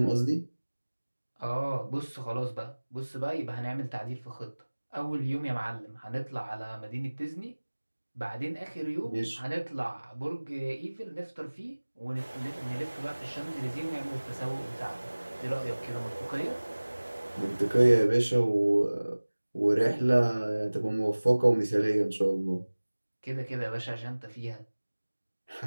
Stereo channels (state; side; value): inverted; both; correlation -1.00